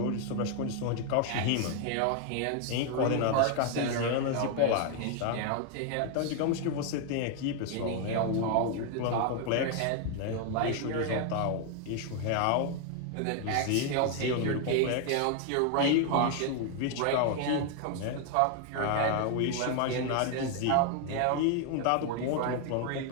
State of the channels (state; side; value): different; both; correlation 0.00